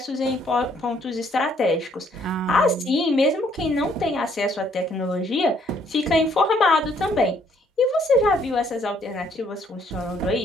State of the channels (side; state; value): both; normal; correlation 0.66